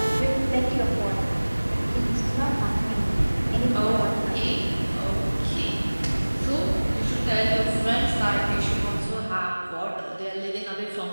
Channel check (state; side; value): inverted; both; correlation -1.00